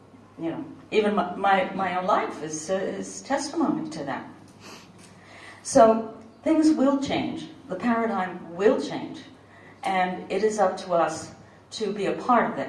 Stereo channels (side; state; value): both; identical; correlation 1.00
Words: You know, even my own life is testimony to that. So things will change. The paradigm will change. And it is up to us to be a part of